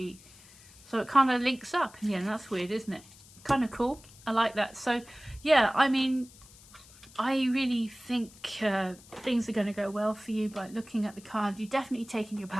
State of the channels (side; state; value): left; noise; hiss, 23 dB below the sound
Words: So it kind of links up, and that's weird, isn't it? Kind of cool. I like that. So yeah, I really think things are going to go well for you by looking at the card. You're definitely taking your